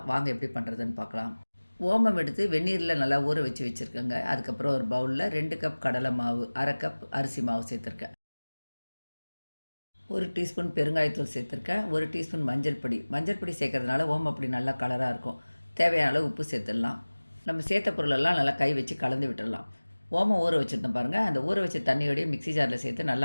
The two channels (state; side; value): inverted; both; correlation -1.00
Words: வாங்க எப்படி பண்ணுறதுன்னு பார்க்கலாம். ஓமம் எடுத்து வெந்நீரில் நல்லா ஊற வச்சு வச்சுருக்கேங்க. அதுக்கப்புறம் ஒரு பவுலில் 2 கப் கடலை மாவு, 1/2 கப் அரிசி மாவு சேர்த்துருக்கேன். 1 டீஸ்பூன் பெருங்காயத்தூள் சேர்த்துருக்கேன். 1 டீஸ்பூன் மஞ்சள் பொடி. மஞ்சள் பொடி சேர்க்கறதுனால ஓமப்பொடி நல்லா கலராக இருக்கும். தேவையான அளவு உப்பு சேர்த்துடலாம். நம்ம சேர்த்த பொருளெல்லாம் நல்லா கை வச்சு கலந்து விட்டுடலாம். ஓமம் ஊற வச்சுருந்தோம் பாருங்கள். அந்த ஊற வச்ச தண்ணியோடய மிக்ஸி ஜாரில் சேர்த்து